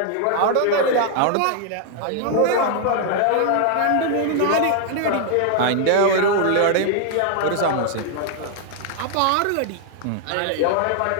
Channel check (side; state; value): both; different; correlation 0.00